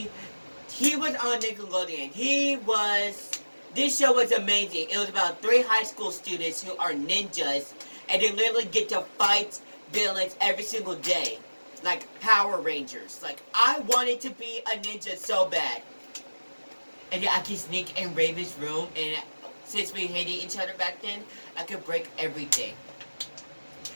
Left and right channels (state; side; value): inverted; both; correlation -1.00